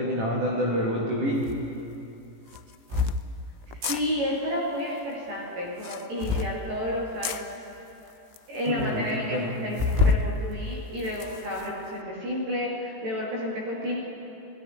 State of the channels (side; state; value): left; late; 18 ms